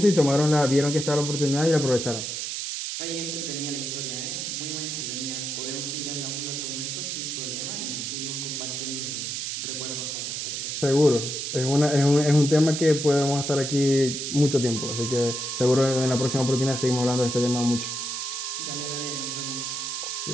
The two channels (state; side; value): noise; right; hiss, 4 dB below the sound